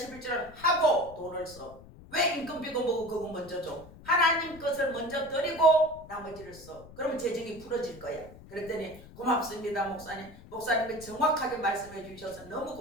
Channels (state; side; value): noise; left; rumble, 19 dB below the sound